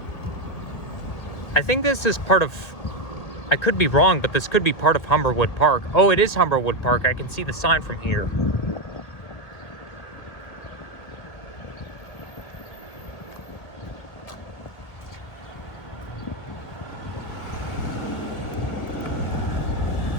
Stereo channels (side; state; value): right; late; 1.6 ms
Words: I think this is part of, I could be wrong, but this could be part of Humberwood Park. Oh, it is Humberwood Park. I can see the sign from here.